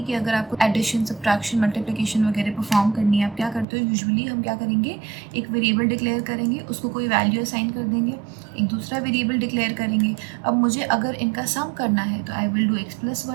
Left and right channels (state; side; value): drops out; left; at 3.7 s